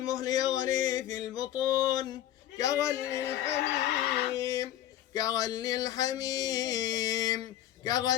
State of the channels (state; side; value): quieter; right; 12.4 dB